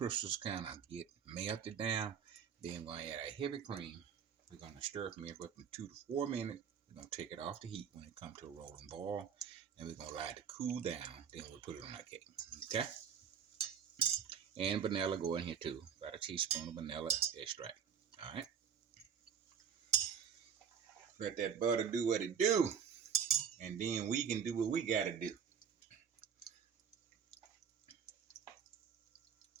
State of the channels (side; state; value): left; quieter; 7.4 dB